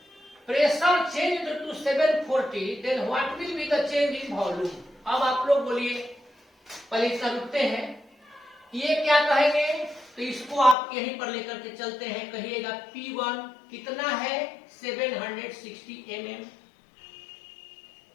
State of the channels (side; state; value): right; drops out; at 10.8 s